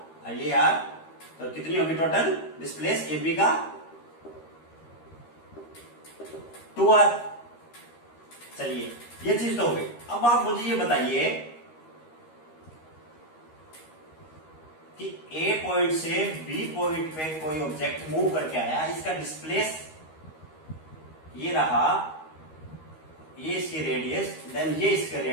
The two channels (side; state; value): right; late; 13 ms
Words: और ये आर, तो कितनी होगी टोटल डिस्प्लेस ए बी का 2r। चलिए ये चीज तो हो गई। अब आप मुझे ये बताइए कि ए पॉइंट से बी पॉइंट पे कोई ऑब्जेक्ट मूव करके आया, इसका डिस्प्लेस ये रहा, ये इसकी रेडियस, देन ये इसका